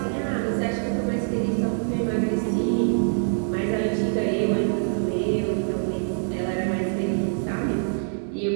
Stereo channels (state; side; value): silent; left; 61 dB below the other